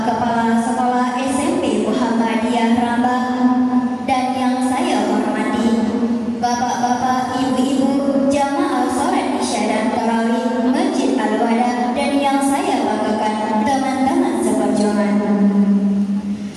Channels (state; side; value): identical; both; correlation 1.00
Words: Kepala Sekolah SMP Muhammadiyah Rambang, dan yang saya hormati bapak-bapak, ibu-ibu jamaah salat Isya dan tarawih Masjid Al-Wada, dan yang saya banggakan teman-teman seperjuangan.